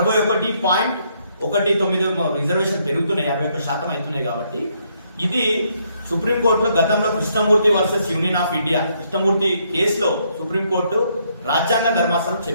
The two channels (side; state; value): both; inverted; correlation -0.72